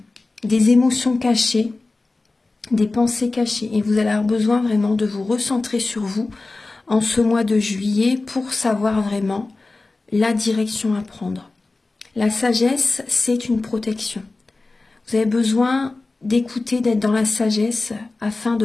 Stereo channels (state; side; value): quieter; right; 3.4 dB